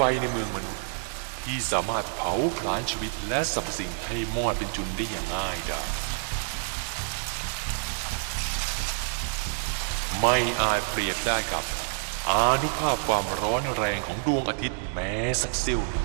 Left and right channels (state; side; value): silent; left; digital silence